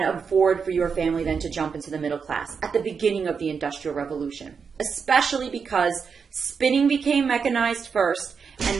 afford for your family then to jump into the middle class at the beginning of the Industrial Revolution, especially because spinning became mechanized first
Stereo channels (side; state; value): left; quieter; 5.9 dB